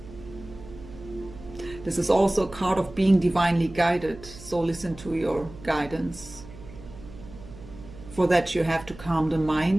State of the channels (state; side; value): noise; right; hum, 17 dB below the sound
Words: This is also a card of being divinely guided, so listen to your guidance. For that you have to calm the